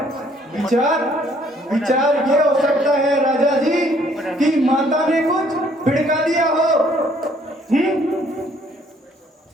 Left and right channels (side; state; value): both; normal; correlation 0.63